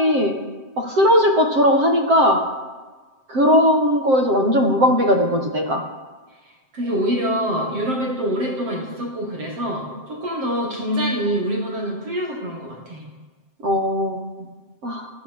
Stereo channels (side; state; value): left; late; 7.6 ms